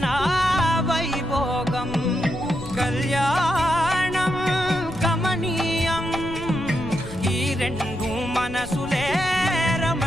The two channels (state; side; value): noise; left; rumble, 13 dB below the sound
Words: వైభోగం కళ్యాణం గమనీయం ఈ రెండు మనసులే